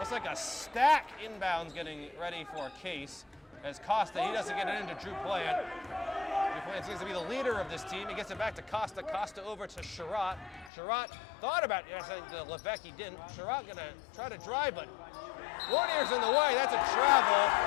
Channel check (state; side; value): drops out; right; at 10.7 s